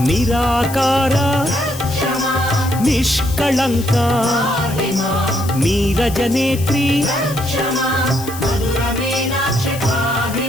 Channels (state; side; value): noise; left; hiss, 13 dB below the sound